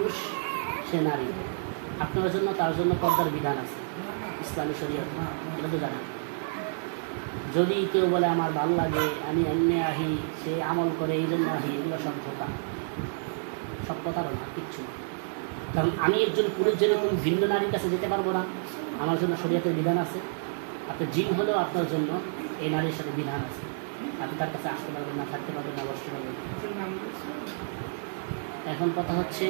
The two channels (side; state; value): left; silent; 58 dB below the other